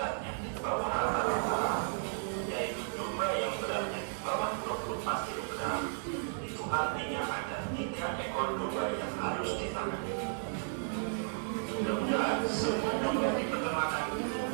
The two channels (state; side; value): silent; left; digital silence